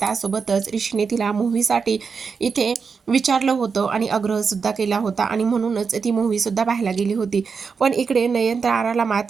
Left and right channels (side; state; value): left; quieter; 5.5 dB